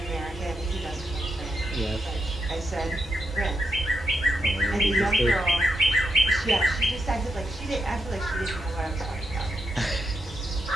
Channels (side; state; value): both; normal; correlation 0.83